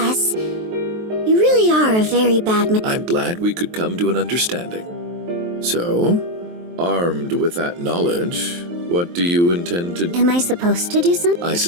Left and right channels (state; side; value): late; left; 23 ms